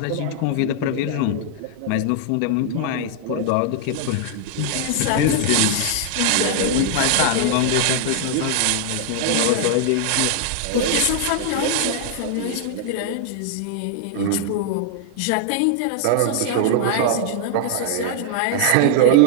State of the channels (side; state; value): both; different; correlation 0.00